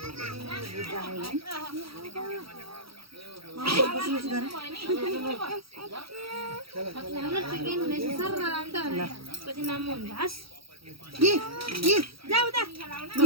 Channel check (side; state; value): left; late; 0.75 ms